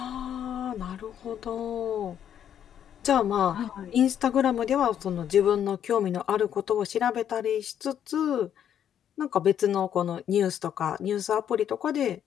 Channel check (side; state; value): right; quieter; 9.5 dB